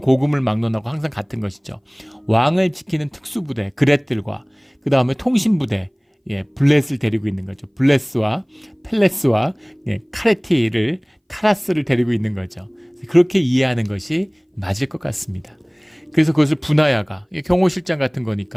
막론하고 항상 같은 것이죠. 왕을 지키는 특수부대, 그렛들과 그 다음에 통신부대, 블렛을 데리고 있는 거죠. 블레스와 펠레스와 카라스를 데리고 있는 거죠. 그렇게 이해하는 것이 맞을 것 같습니다. 그래서 그것을 분하야가, 경호실장 같은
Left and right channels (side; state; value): both; identical; correlation 1.00